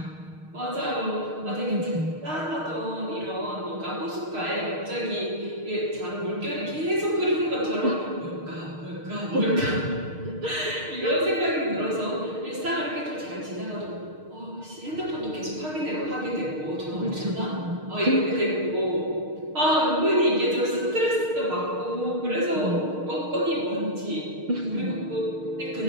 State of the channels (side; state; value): left; late; 6.5 ms